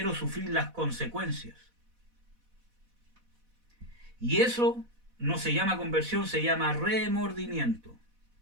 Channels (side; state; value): left; late; 4.1 ms